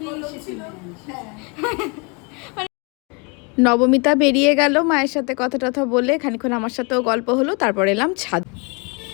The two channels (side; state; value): right; quieter; 31.7 dB